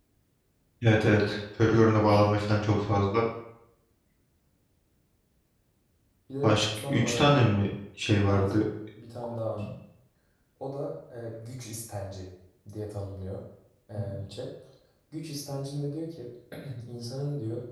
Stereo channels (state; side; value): identical; both; correlation 1.00